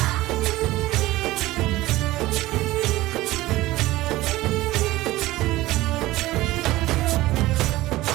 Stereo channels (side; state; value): left; quieter; 17.7 dB